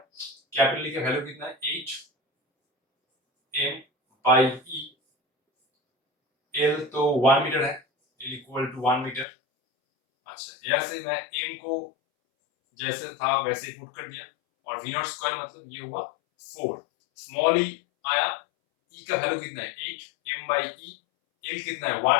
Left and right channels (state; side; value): drops out; right; at 9.2 s